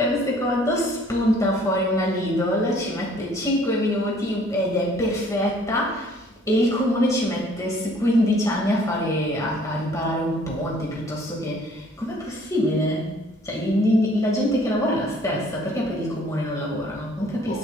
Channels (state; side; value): normal; both; correlation 0.57